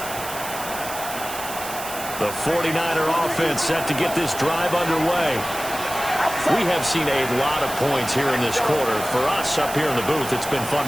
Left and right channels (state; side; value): noise; right; hiss, 9 dB below the sound